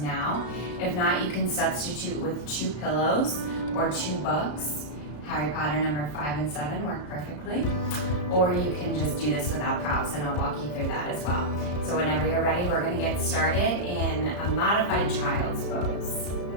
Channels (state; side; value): late; right; 34 ms